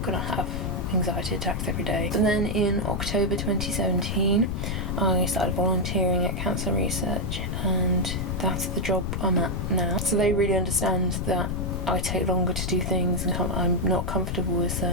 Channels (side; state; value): left; noise; rumble, 2 dB below the sound